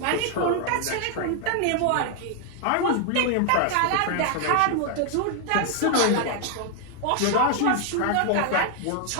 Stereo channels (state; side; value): different; both; correlation 0.00